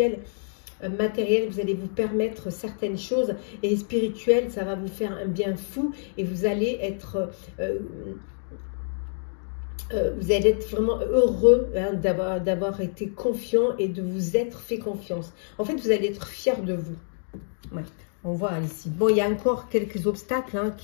Matériel, vous allez vous permettre certaines choses, et spirituel, ça va vous faire un bien fou et vous allez être vraiment heureux d'avoir été confiant et de vous être fait confiance. En fait, vous allez être fier de vous. Ouais. On voit ici. Bon, il y a encore quelques obstacles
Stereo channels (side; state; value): right; silent; digital silence